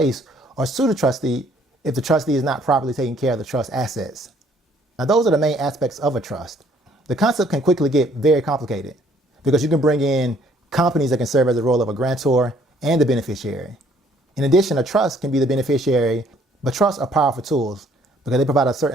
or sue the trustee if the trustee is not properly taking care of the trust assets. Now, those are the main aspects of a trust. The concept can quickly get very complicated because you can bring in companies that can serve as the role of a grantor and the beneficiary. In addition, a trust can be the beneficiary, but trusts are powerful tools because they provide a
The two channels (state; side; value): normal; both; correlation 0.62